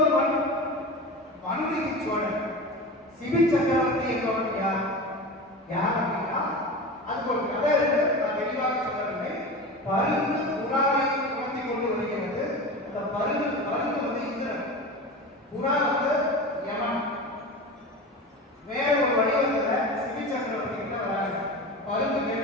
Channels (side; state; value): both; normal; correlation 0.29